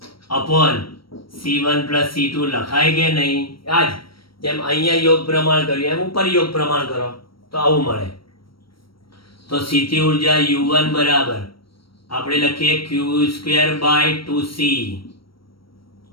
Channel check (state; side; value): late; right; 0.74 ms